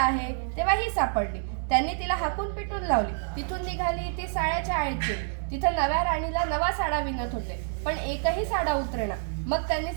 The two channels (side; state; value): left; silent; 60 dB below the other